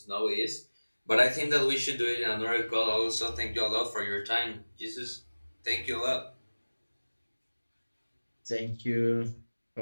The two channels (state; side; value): inverted; both; correlation -1.00